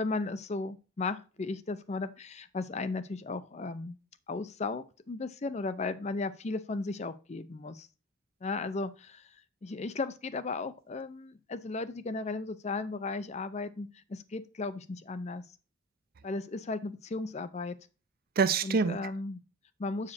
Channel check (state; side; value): normal; both; correlation 0.33